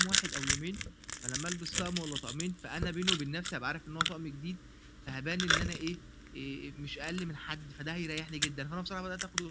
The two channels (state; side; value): identical; both; correlation 1.00